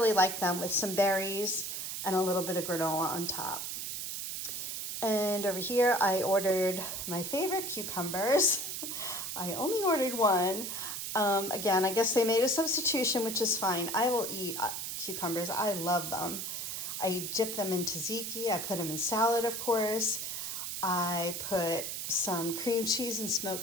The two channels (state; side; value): noise; right; hiss, 4 dB below the sound